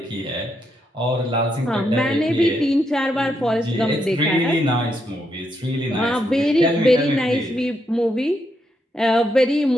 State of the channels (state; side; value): normal; both; correlation 0.79